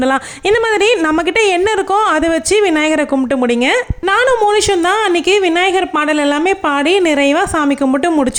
இந்த மாதிரி நம்மக்கிட்ட என்ன இருக்கோ அதை வச்சு விநாயகரை கும்பிட்டு முடிங்க. நானும் மோனிஷும் தான் அன்றைக்கி விநாயகர் பாடல் எல்லாமே பாடி நிறைவாக சாமி கும்பிட்டு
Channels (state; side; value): identical; both; correlation 1.00